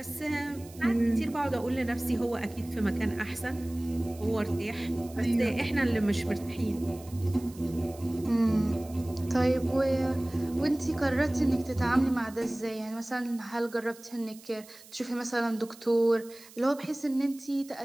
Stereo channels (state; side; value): noise; right; hiss, 21 dB below the sound